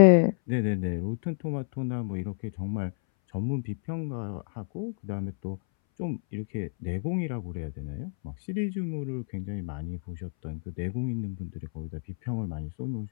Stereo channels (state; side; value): silent; right; 58 dB below the other